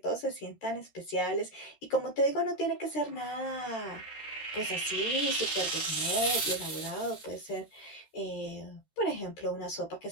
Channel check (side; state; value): right; late; 13 ms